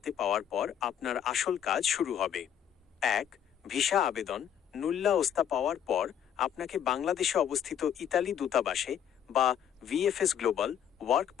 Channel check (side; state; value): right; quieter; 9.4 dB